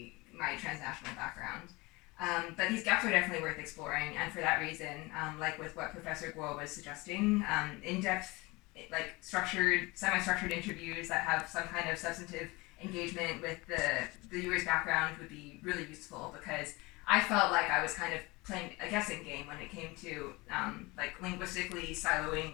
transnational background. But these gaps are definitely worth exploring, and for that reason, like with what Professor Guo was suggesting, in-depth, like semi-structured interviews that have some kind of substantive engagement with the viewer's background would be really useful, because I felt like I was kind of playing a guessing game when it came to like linguistically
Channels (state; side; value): quieter; right; 23.6 dB